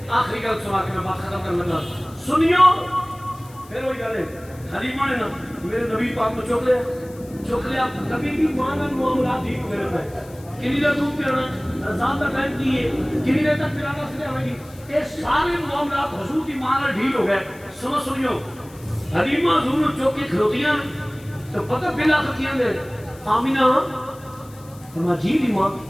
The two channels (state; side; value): noise; left; hiss, 24 dB below the sound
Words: آخری گل سنا کے میں بات ختم کرنے لگا. سنیو پھر وہی گل ہے حلیمہ نے نا میرے نبی پاک کو چوک لیا کبھی بھی ماں کا معاملات ٹھیک میرے پہ کنی دیر دودھ پیانا رضا کا ٹائم کی ہے کنی دیر تک پلانا سے آئے گی یہ سارے معاملات حضور کی ماں کا ڈھیل ہو گئے. سنیو حلیمہ حضور چوک کے کھلوتیاں تو پتہ بلا کتیاں دے آمینہ فرما جی دی ماں